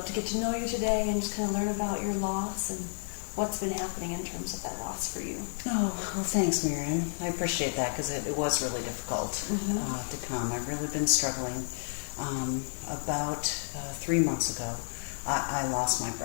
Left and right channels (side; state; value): right; silent; 56 dB below the other